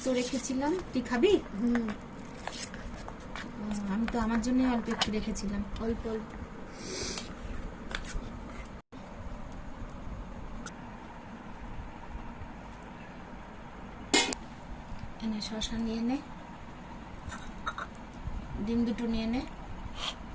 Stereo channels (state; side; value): identical; both; correlation 1.00